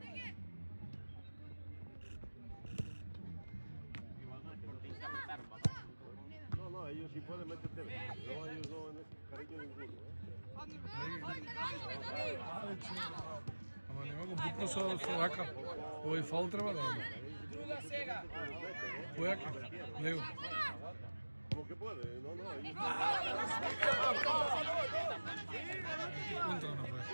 No, ellos sí pueden meterte. No, ellos no en ese cariño ninguno. Ама нема го бутно со рака. Овој фаул треба да има. Druga sega. Појака. Лево. Como que puede, no, ellos... Контра направи.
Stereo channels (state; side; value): inverted; both; correlation -1.00